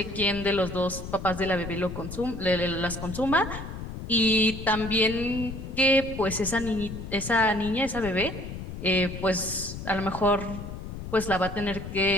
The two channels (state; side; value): noise; left; rumble, 9 dB below the sound